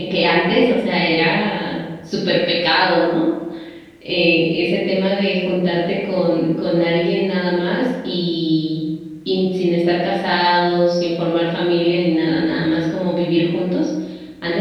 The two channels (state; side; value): identical; both; correlation 1.00